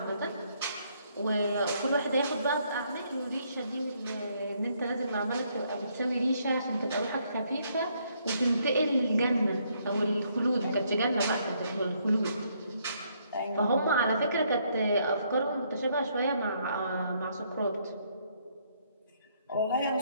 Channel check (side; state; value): both; inverted; correlation -0.71